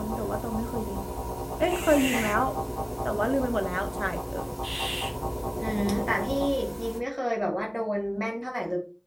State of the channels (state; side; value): identical; both; correlation 1.00